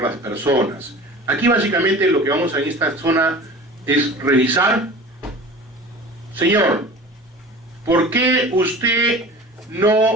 las personas. Aquí básicamente lo que vamos a en esta zona es revisar. Señor, ¿por qué usted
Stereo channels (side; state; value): both; normal; correlation 0.39